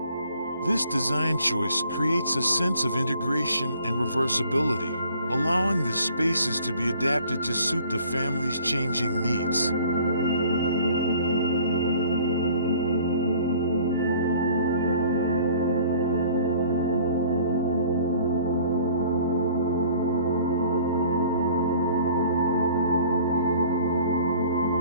This design choice creates a sense of integration and reversibility, allowing the spaces to be adapted to suit the family's changing needs.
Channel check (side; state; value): both; inverted; correlation -0.53